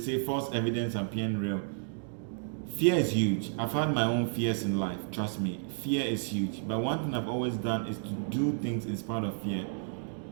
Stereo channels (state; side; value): silent; left; digital silence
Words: false evidence appearing real. Fear is huge. I've had my own fears in life, trust me. Fear is huge. But one thing I've always done is to do things in spite of fear.